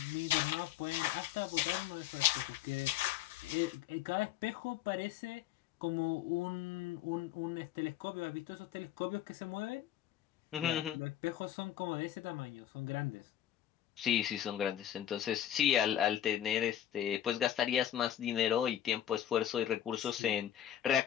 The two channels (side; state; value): right; quieter; 11.2 dB